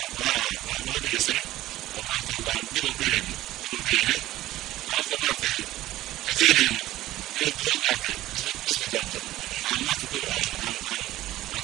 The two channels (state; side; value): quieter; left; 15.4 dB